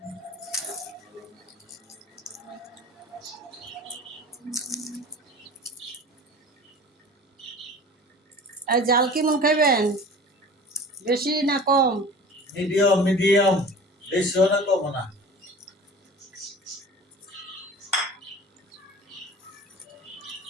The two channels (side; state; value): both; normal; correlation 0.40